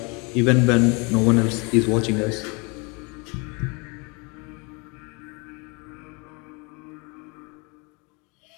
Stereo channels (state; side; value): quieter; right; 30.2 dB